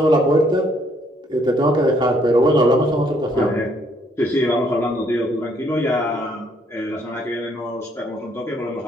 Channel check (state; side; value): normal; both; correlation 0.68